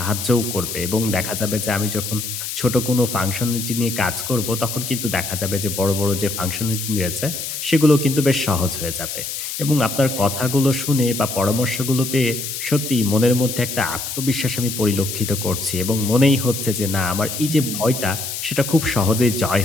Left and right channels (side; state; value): left; noise; hiss, 6 dB below the sound